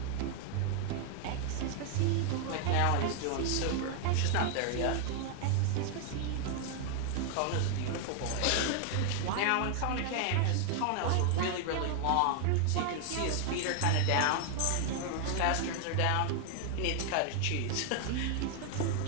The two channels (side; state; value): both; different; correlation 0.00